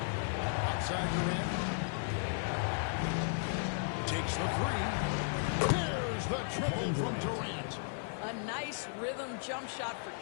Outside Durant. Takes the 3. There's the triple from Durant. A nice rhythm jump shot for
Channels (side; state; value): right; silent; 54 dB below the other